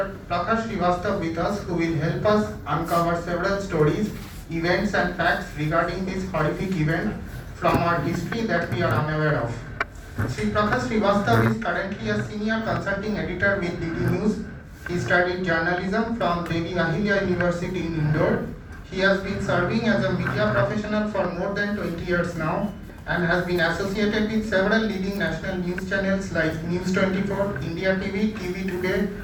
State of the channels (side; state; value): both; identical; correlation 1.00